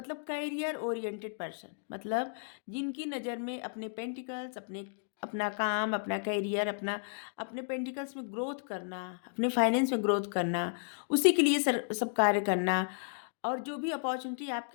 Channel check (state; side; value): silent; right; digital silence